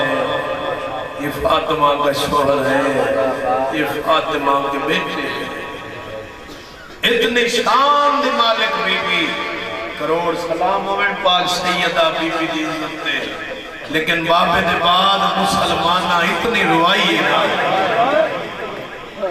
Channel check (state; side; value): identical; both; correlation 1.00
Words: یہ فاطمہ کا شوہر ہے یہ فاطمہ کے بیٹے ہیں اتنے شان دی مالک بی بی کروڑ سلام ہوئے پاک سیدہ بی بی دی عزت دے لیکن بابے دے بعد مسلمانہ اتنی روائی ہے نا